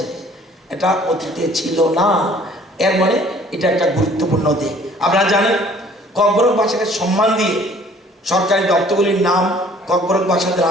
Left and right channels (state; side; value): normal; both; correlation 0.55